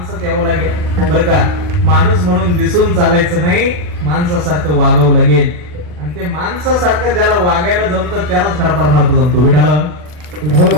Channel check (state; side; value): late; left; 40 ms